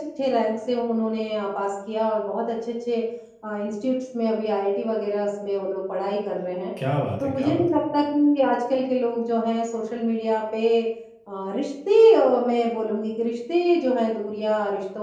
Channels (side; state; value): both; identical; correlation 1.00